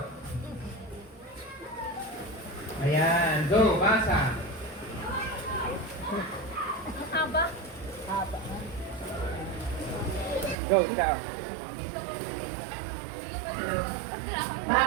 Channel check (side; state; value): left; drops out; at 10.6 s